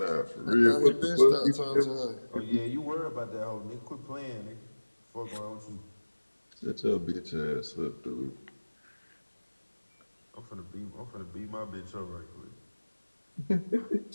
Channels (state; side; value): inverted; both; correlation -1.00